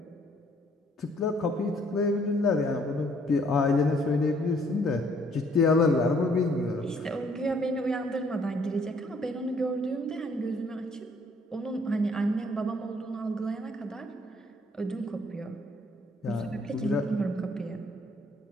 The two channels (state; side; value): normal; both; correlation 0.64